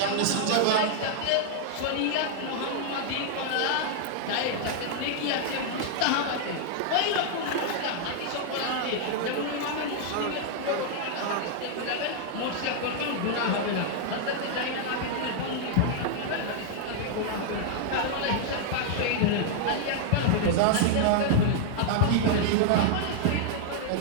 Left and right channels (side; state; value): both; different; correlation -0.01